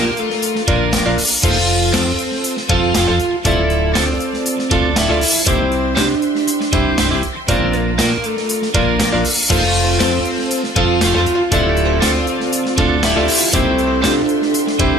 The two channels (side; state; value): both; normal; correlation 0.65